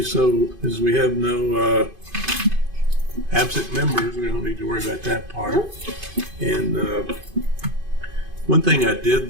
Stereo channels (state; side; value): late; left; 2.5 ms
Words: so as we have no absent members, we don't need to worry about that part. And one thing I